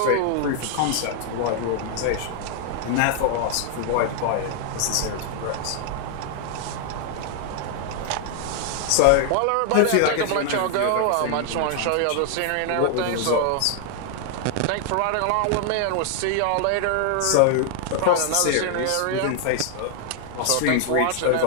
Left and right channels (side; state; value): both; different; correlation 0.00